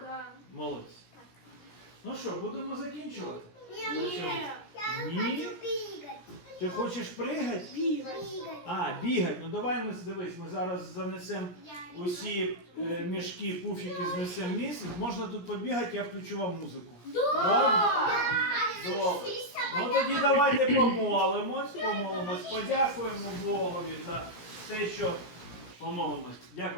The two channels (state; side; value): late; right; 17 ms